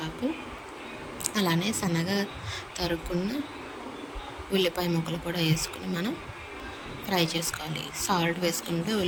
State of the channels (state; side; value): identical; both; correlation 1.00